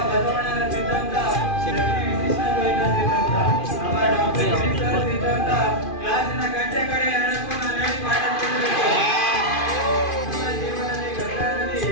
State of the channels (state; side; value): late; right; 2.5 ms